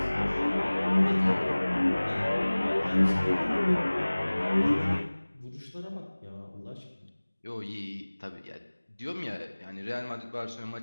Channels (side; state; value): both; inverted; correlation -1.00